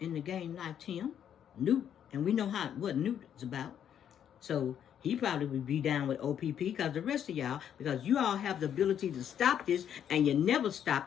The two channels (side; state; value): right; quieter; 9.3 dB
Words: in the game liked him, Newt, and we know what Newt is about. So he probably would be down with OPP because the rest of y'all, because you all have the ability to stop this and you never